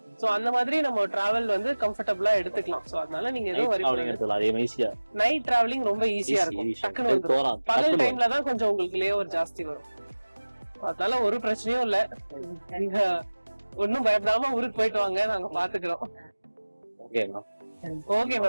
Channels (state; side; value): inverted; both; correlation -1.00